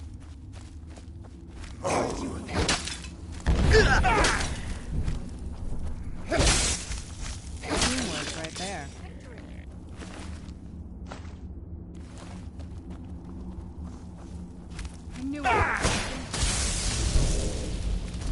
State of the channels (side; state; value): both; identical; correlation 1.00